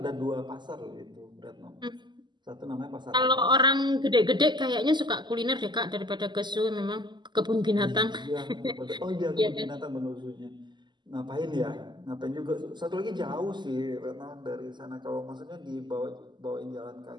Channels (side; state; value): left; late; 0.21 ms